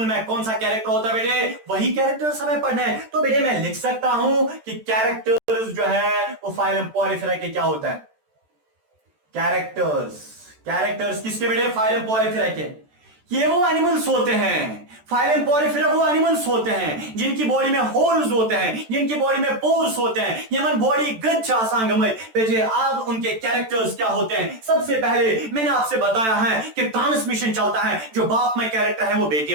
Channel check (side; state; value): left; late; 13 ms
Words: में कौन सा कैरेक्टर होता है बेटे, वही कैरेक्टर्स हमें पढ़ने हैं। तो बेटे मैं लिख सकता हूं कि कैरेक्टर्स जो है वो फाइलम पॉरीफेरा के क्या होता है, कैरेक्टर्स किसके बेटे, फाइलम पॉरीफेरा के। ये वो एनिमल्स होते हैं, फाइलम पॉरीफेरा वो एनिमल्स होते हैं जिनकी बॉडी में होल्स होते हैं, जिनकी बॉडी में पोर्स होते हैं। यमन बॉडी गच्छा सांगमय बेटे। अब उनके कैरेक्टर्स क्या होते हैं? सबसे पहले मैंने आपसे बताया है कि ट्रांसमिशन चलता है, जो बाप में कैरेक्टर है वो बेटे